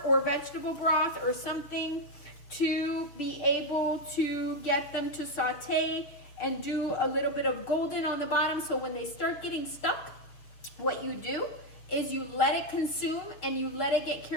or vegetable broth or something to be able to get them to saute and do a little bit of golden on the bottom. So when they start getting stuck, what you do is you let it consume and you let it get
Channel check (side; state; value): right; late; 6.7 ms